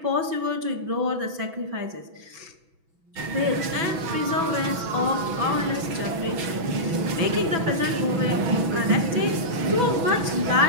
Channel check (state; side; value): late; left; 6.1 ms